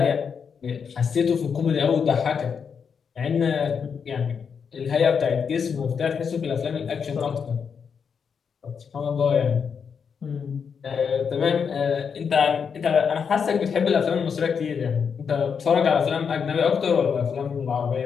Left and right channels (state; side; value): quieter; right; 6.5 dB